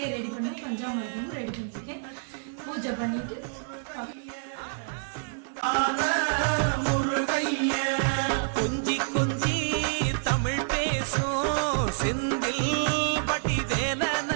ரெடி பண்ணி பஞ்சாமிரதமும் ரெடி பண்ணியிருக்கேன். பூஜை பண்ணிட்டு கொஞ்சி கொஞ்சி தமிழ் பேசும் செந்தில் பட்டி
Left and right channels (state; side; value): silent; left; 59 dB below the other